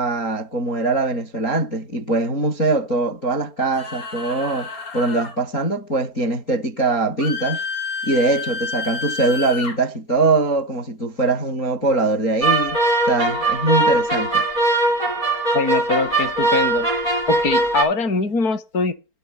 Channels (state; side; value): late; right; 4.3 ms